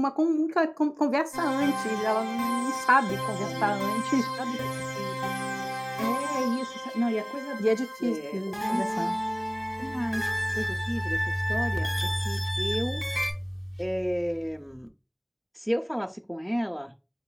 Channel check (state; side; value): identical; both; correlation 1.00